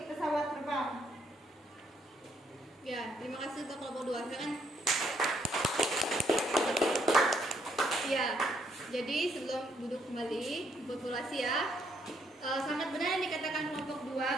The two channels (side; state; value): both; normal; correlation 0.71